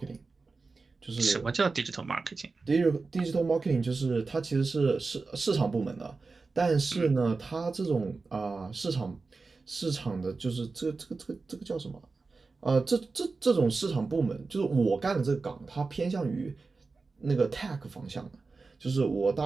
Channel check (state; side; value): quieter; left; 4.1 dB